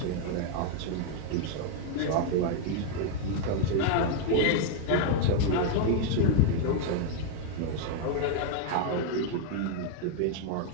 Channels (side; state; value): both; different; correlation 0.00